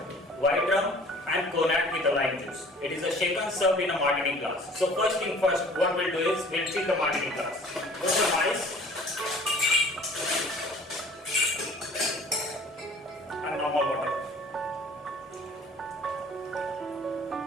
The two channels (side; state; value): both; normal; correlation 0.50